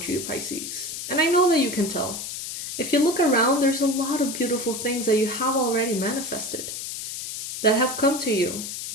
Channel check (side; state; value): left; noise; hiss, 7 dB below the sound